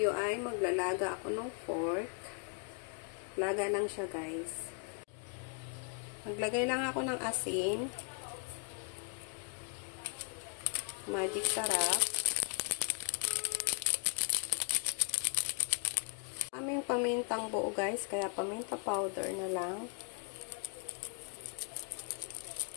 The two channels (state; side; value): quieter; right; 39.0 dB